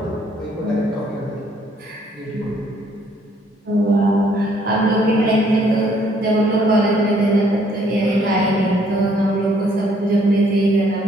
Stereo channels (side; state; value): both; normal; correlation 0.65